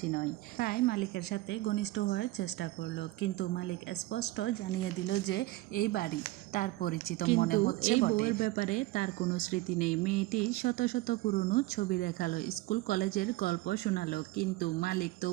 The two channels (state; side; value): quieter; left; 18.5 dB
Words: নয়। তাই মালিকের সাথে ঘনিষ্ঠ হওয়ার চেষ্টা করলো, কিন্তু মালিক স্পষ্ট জানিয়ে দিল যে এই বাড়ি তার পরিচিত মনে হচ্ছে বটে, ব্যাপারে তার কোনো স্মৃতি নেই। মেয়েটি শত শত পুরনো ছবি দেখালো, স্কুল কলেজের গল্প শোনালো, কিন্তু মালিক